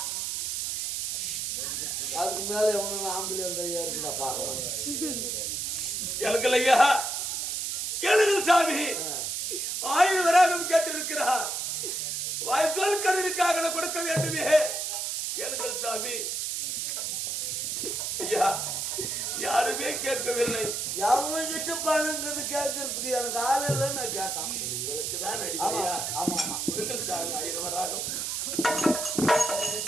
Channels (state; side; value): noise; right; hiss, 2 dB below the sound